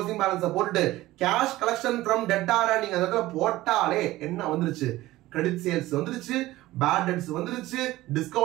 பேலன்ஸ் போட்டுட்டு கேஷ் கலெக்ஷன் ஃப்ரம் டெட்டார நீங்க அதல போட்டாலே என்ன வந்துருச்சு? கிரெடிட் சேல்ஸ் வந்துருச்சு, பேட் டெட்ஸ் வந்துருச்சு,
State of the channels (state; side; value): quieter; left; 17.0 dB